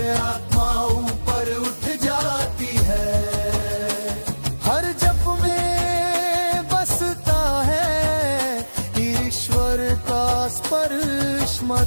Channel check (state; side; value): inverted; both; correlation -1.00